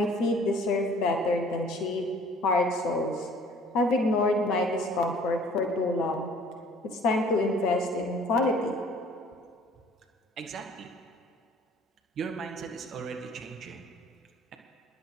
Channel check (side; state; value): both; normal; correlation 0.53